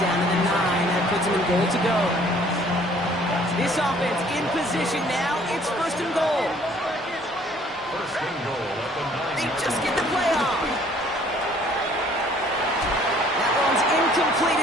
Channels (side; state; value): both; normal; correlation 0.57